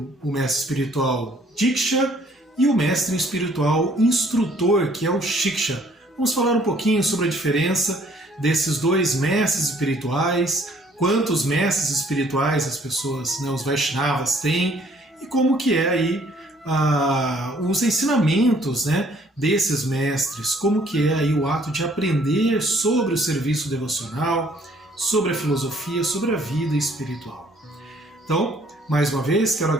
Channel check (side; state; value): both; normal; correlation 0.61